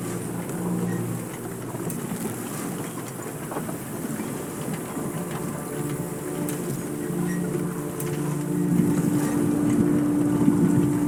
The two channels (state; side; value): identical; both; correlation 1.00